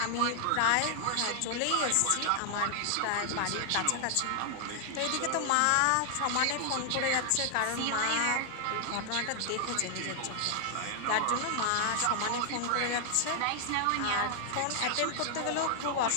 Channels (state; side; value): different; both; correlation 0.00